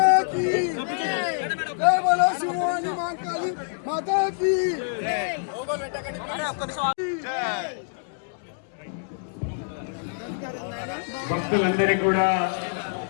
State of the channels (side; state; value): right; silent; digital silence